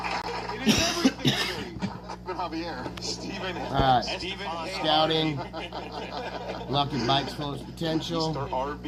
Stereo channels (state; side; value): identical; both; correlation 1.00